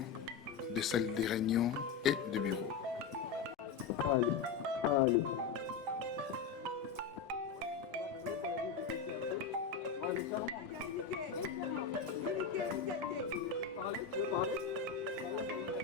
des salles de réunion et de bureaux.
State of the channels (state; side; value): quieter; right; 5.8 dB